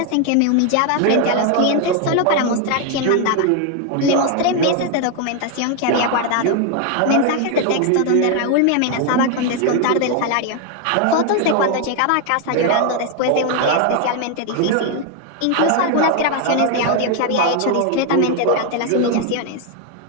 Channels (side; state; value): both; different; correlation 0.01